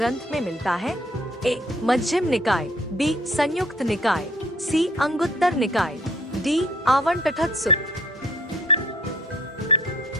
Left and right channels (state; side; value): normal; both; correlation 0.58